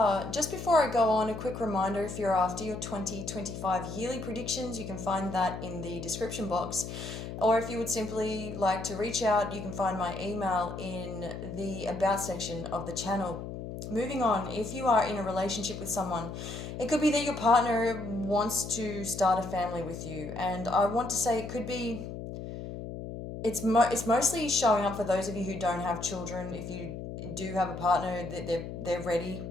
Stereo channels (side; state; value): left; noise; hum, 8 dB below the sound